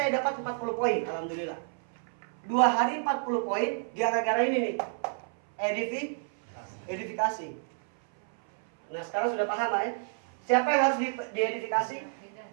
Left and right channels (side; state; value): left; silent; 58 dB below the other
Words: dapat 40 poin, alhamdulillah. 2 hari 40 poin gara-gara ini nih. Edifikasi. Nah, sekarang sudah paham ya? Siapa yang harus diedifikasi?